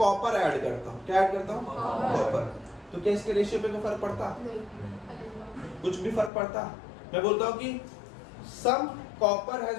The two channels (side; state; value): right; drops out; at 6.3 s